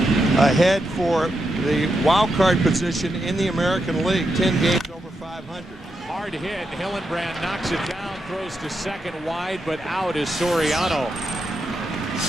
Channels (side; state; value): both; normal; correlation 0.84